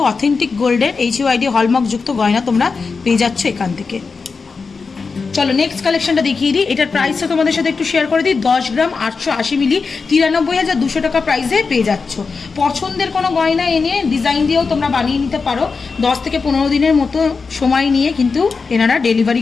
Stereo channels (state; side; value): quieter; right; 4.7 dB